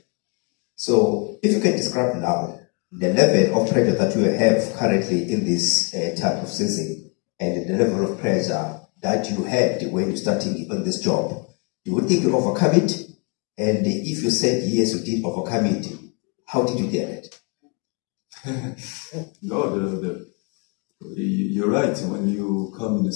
So, if you can describe now the level of pressure that you have currently in this type of season, and the level of pressure that you had when you starting on this job, do you think you overcome it? And if you said yes, you did overcome it, how did you get it? No, you're right. When you come in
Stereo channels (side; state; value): right; quieter; 33.1 dB